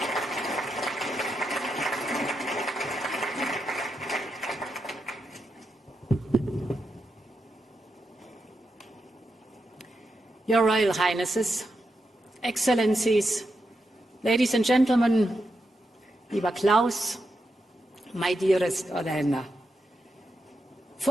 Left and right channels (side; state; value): both; normal; correlation 0.85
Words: Your Royal Highnesses, Excellencies, ladies and gentlemen, lieber Klaus, my dearest Olena,